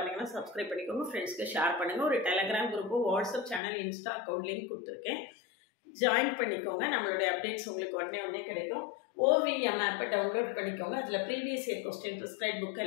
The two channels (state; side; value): drops out; right; at 3.6 s